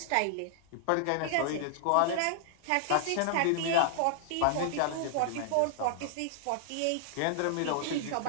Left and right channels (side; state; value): both; different; correlation -0.01